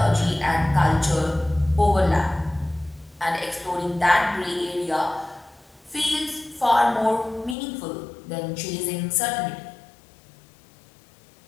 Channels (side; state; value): right; drops out; at 7.6 s